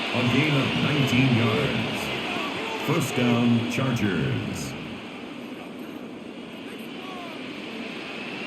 A gain of 19 yards. First down, Chargers.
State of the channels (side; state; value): both; identical; correlation 1.00